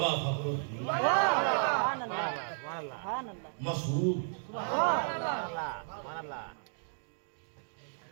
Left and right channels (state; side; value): silent; left; digital silence